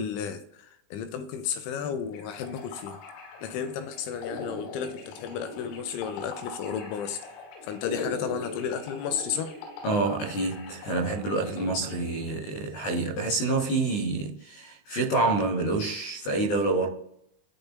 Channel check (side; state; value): right; late; 20 ms